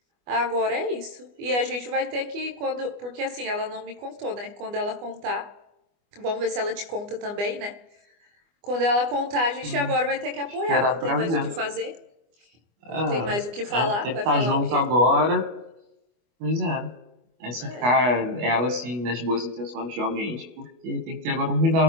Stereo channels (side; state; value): left; late; 24 ms